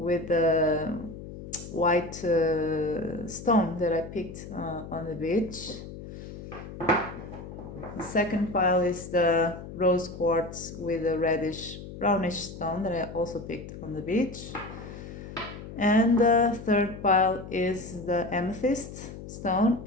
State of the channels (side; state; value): left; noise; hum, 12 dB below the sound